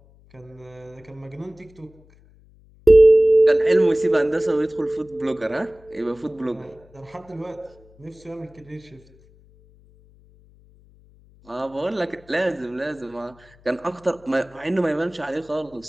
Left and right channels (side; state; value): left; noise; hum, 28 dB below the sound